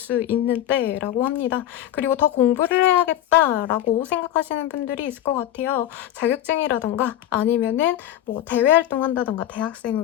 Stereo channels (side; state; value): right; quieter; 12.4 dB